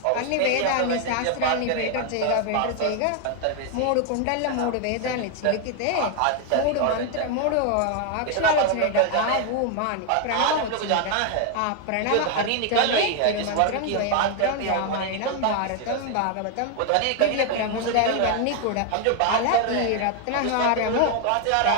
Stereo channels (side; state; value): both; different; correlation 0.01